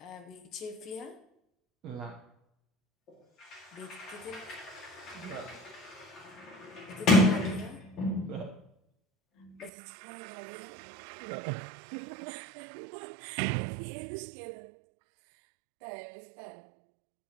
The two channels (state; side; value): drops out; left; at 9.7 s